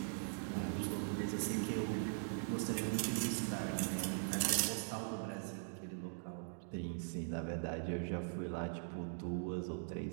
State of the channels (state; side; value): silent; left; digital silence